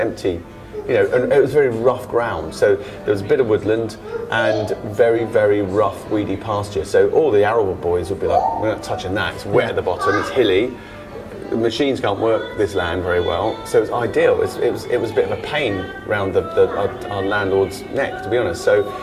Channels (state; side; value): identical; both; correlation 1.00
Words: You know, and it was very rough ground. So there was a bit of woodland and very, very rough, weedy pasture. So all the arable boys would be like, we're not touching that. It's wet at the bottom. It's hilly. The machines can't work this land very well, so it was ideal. It was a bit of a pain around our landlord's neck, to be honest. So,